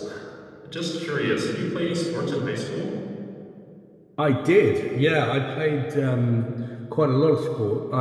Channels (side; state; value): both; identical; correlation 1.00